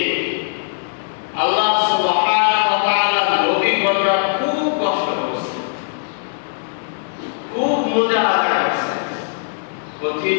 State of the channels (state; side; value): silent; right; digital silence